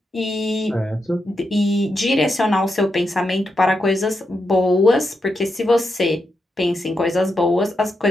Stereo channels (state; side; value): normal; both; correlation 0.85